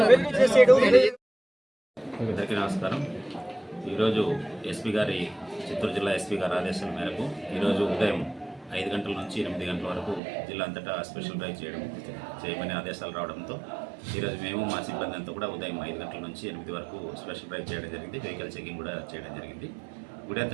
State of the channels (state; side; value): drops out; left; at 10.2 s